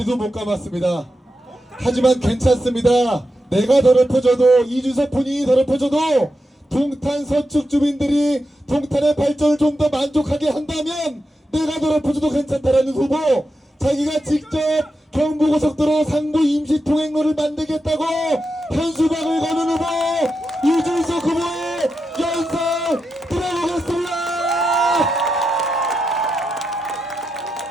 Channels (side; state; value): both; normal; correlation 0.87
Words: 못 감았습니다. 하지만 괜찮습니다. 내가 더럽혀져도, 이준석 본인이 더럽혀져도 동탄 서축 주민들이 동탄의 발전을 좀 더 만족하게 한다면 내가 더럽혀져도 괜찮다라는 후보, 자기가 직접 경부고속도로 상부 임시통행로를 만들겠다고 현수막을 거는 후보 이준석 후보의 연설 들어보겠습니다.